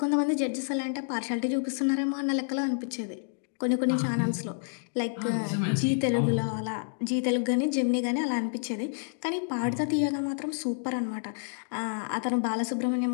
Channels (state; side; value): silent; right; digital silence